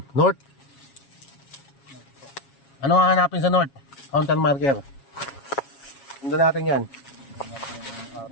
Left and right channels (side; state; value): right; late; 7.3 ms